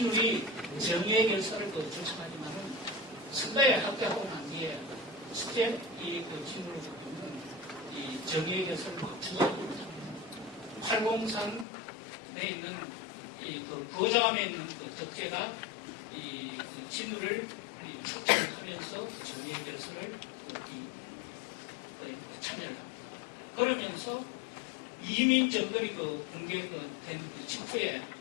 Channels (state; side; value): drops out; right; at 11.7 s